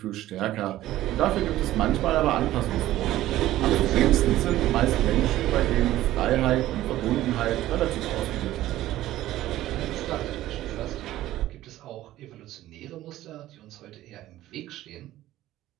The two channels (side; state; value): left; quieter; 14.7 dB